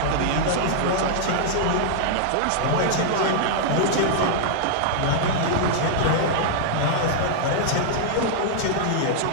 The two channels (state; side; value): different; both; correlation -0.01